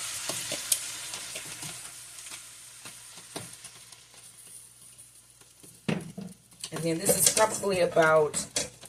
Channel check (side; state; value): both; identical; correlation 1.00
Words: And then this is probably about